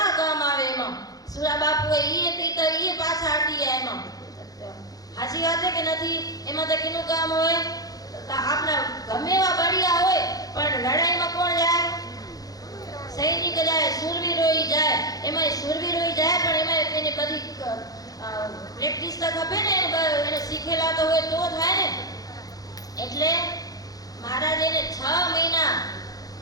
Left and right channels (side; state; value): right; late; 0.18 ms